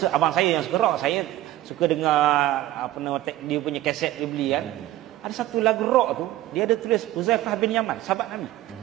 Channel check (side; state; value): left; quieter; 15.0 dB